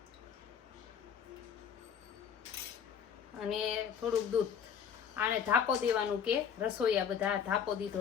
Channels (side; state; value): right; quieter; 7.7 dB